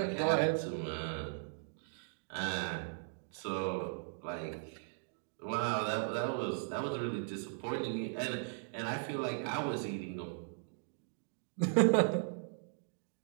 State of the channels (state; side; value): silent; left; digital silence